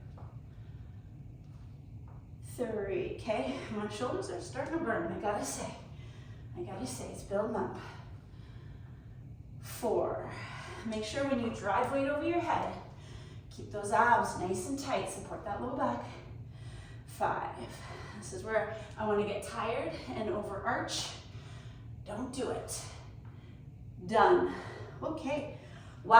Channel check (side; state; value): both; identical; correlation 1.00